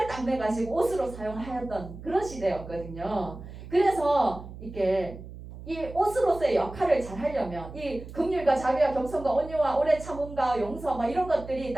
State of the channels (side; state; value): right; noise; hum, 13 dB below the sound